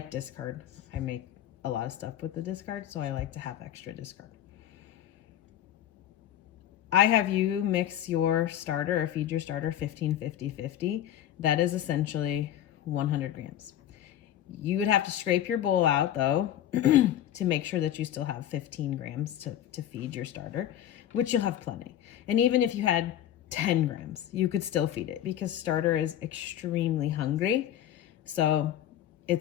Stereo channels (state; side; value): quieter; right; 11.4 dB